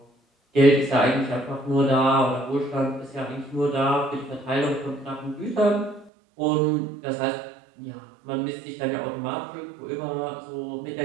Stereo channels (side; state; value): left; drops out; at 6.1 s